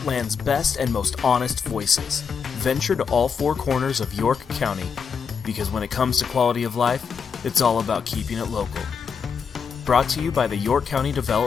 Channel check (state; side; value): quieter; right; 6.3 dB